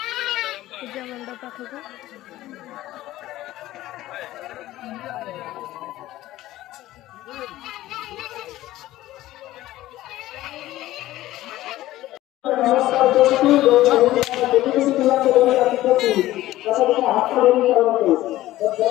पूजा मंडप पाखक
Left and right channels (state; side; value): quieter; right; 15.6 dB